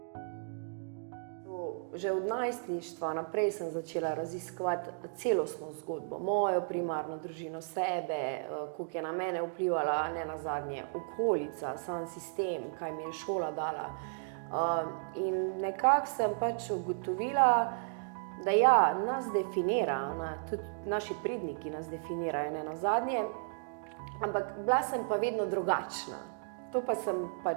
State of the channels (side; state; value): left; silent; digital silence